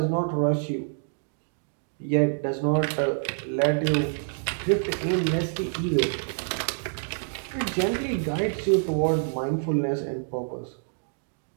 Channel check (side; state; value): left; silent; digital silence